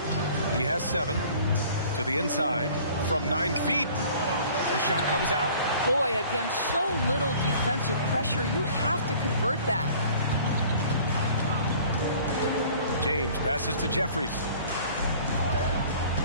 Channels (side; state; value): both; inverted; correlation -0.50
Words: He has 7. To the inside from 9 feet. The shot comes out. Boy, against so little defensive pressure, you have to convert that. James passes to Jeffries.